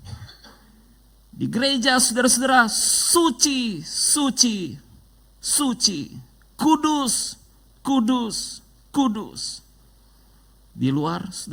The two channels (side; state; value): both; identical; correlation 1.00